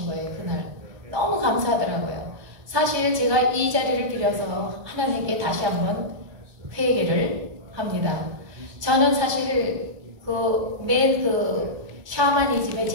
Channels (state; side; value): late; left; 1.2 ms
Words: 거예요. 그날. 너무 감사하더라고요. 사실 제가 이 자리를 빌어서 하나님께 다시 한번 회개를 합니다. 저는 사실 맨 샤머니즘의